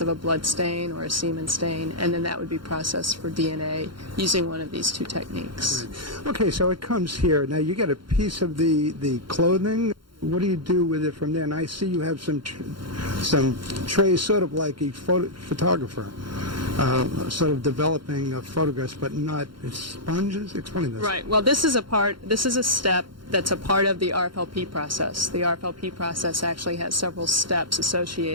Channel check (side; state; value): left; late; 0.73 ms